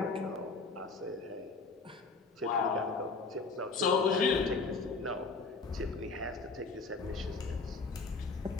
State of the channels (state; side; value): quieter; right; 4.1 dB